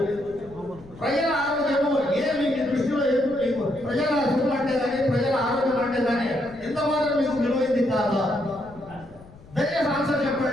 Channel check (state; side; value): noise; left; rumble, 21 dB below the sound